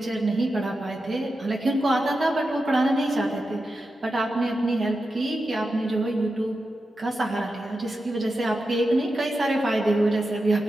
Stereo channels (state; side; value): normal; both; correlation 0.90